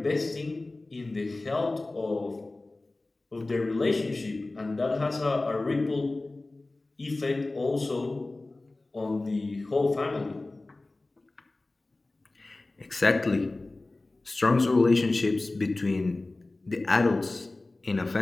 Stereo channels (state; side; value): quieter; right; 3.0 dB